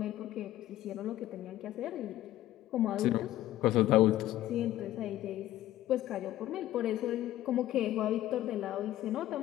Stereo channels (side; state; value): right; quieter; 14.2 dB